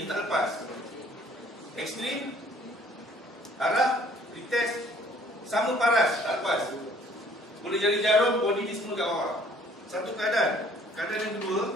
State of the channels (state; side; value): normal; both; correlation 0.58